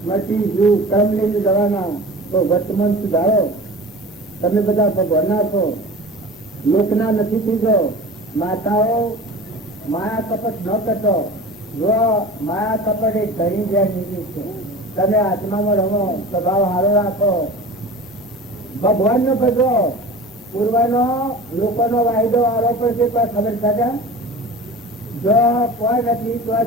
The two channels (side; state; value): both; normal; correlation 0.36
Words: મટી જુ ક્રમ લઈને જવાના. તો વર્તમાન સુધારો. તમે બધા ભગવાનના છો, લોકના નથી થઈ જાઓ. માતાઓ માયા કપટ ન કરતો. જો માયા કપટ એ ઘણી જ્યાં નીકળી છે. તમે આત્મામાં રહો, સ્વભાવ સારો રાખો, ભગવાન નો ભજવો. પૂર્વનો લોકોનો વાયદો આરોપ છે પણ ખબર થશે જો કોઈ નથી તો